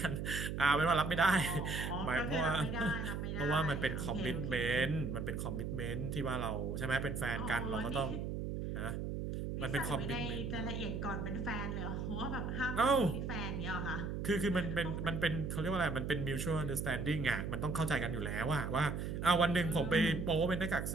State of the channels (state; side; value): noise; right; hum, 3 dB below the sound